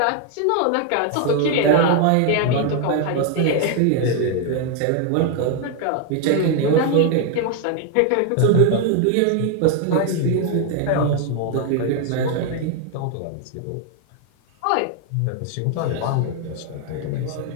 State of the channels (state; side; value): different; both; correlation 0.00